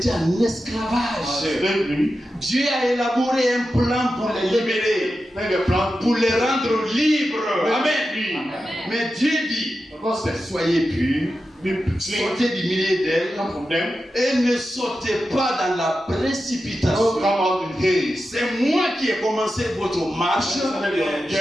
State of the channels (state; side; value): normal; both; correlation 0.91